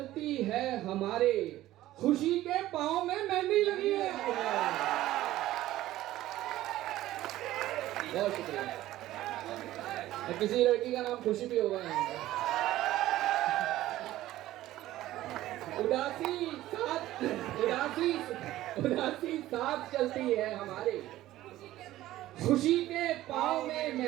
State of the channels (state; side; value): quieter; left; 15.1 dB